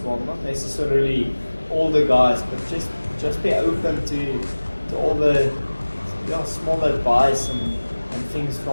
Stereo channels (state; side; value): inverted; both; correlation -1.00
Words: well. Not necessarily all the guys, but just be open to all the small advice and things